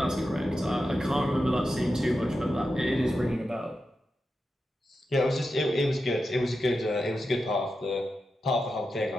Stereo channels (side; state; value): both; normal; correlation 0.90